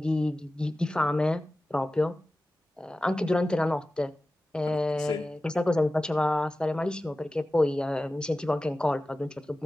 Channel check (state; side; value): normal; both; correlation 0.95